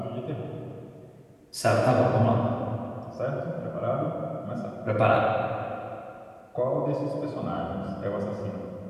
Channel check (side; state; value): both; identical; correlation 1.00